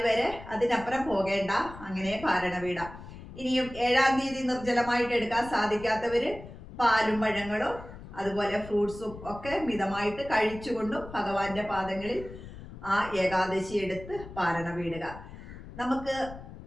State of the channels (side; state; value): left; noise; rumble, 14 dB below the sound